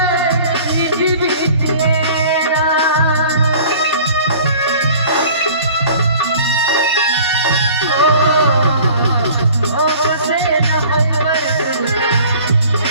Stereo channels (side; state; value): both; inverted; correlation -0.47